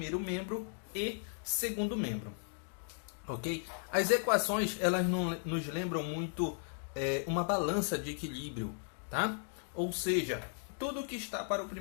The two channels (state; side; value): silent; right; 54 dB below the other